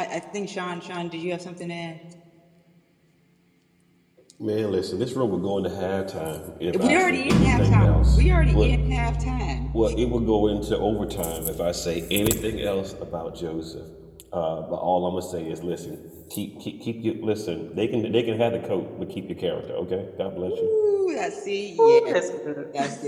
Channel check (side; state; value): both; identical; correlation 1.00